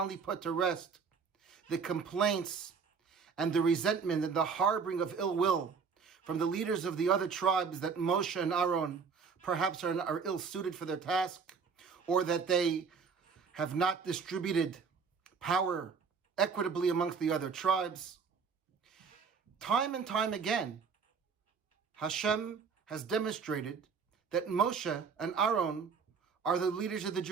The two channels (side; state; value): left; quieter; 5.7 dB